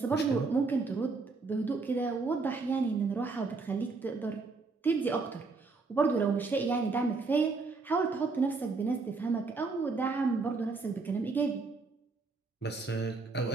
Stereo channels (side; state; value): left; quieter; 4.1 dB